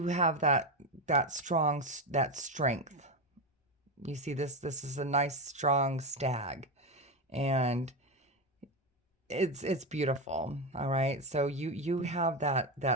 have that strength. You see, this is a nice, strong stag, and it's beautiful. All right. So you have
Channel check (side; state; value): both; normal; correlation 0.14